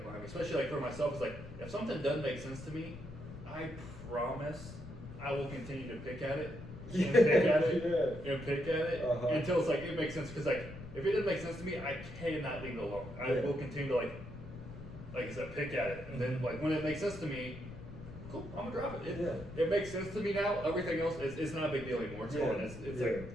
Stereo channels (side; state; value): left; noise; rumble, 13 dB below the sound